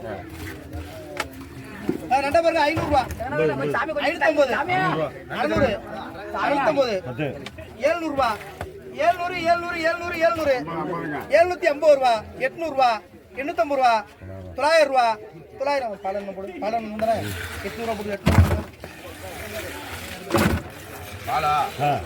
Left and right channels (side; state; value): both; identical; correlation 1.00